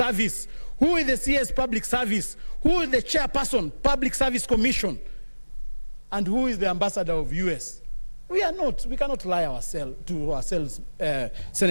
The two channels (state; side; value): inverted; both; correlation -1.00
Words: Who is the CS Public Service? Who is the Chairperson, Public Service Commission? And who is the Ambassador of US? We cannot lie to ourselves,